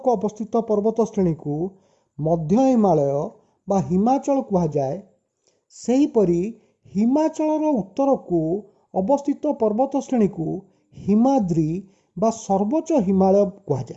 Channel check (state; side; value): identical; both; correlation 1.00